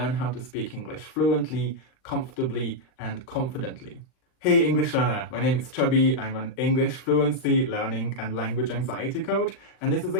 how to speak English fluently, comfortably, and confidently. Hey English learner, my name is Chubby. I'm an English fluency, learning and language anxiety coach, and this is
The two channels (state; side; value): late; right; 39 ms